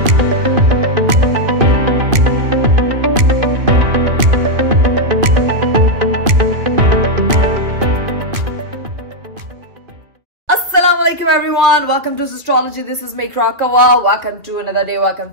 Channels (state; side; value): late; left; 2.8 ms